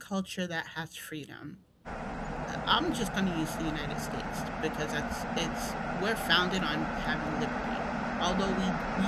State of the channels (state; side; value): identical; both; correlation 1.00